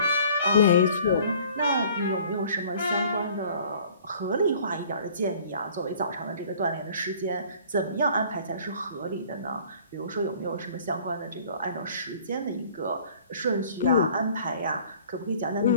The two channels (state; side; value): inverted; both; correlation -0.52